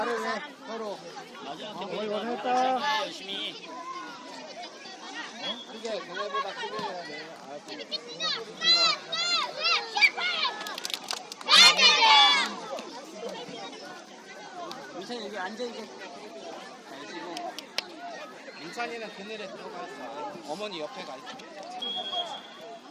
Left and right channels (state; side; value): identical; both; correlation 1.00